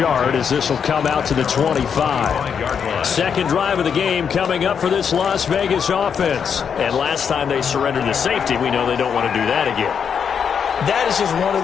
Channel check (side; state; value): right; quieter; 7.1 dB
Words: as this will come out to the 25. Second drive of the game coming up for this Las Vegas offense. And last time they surrendered the safety, we know they don't want to do that again. That is just one of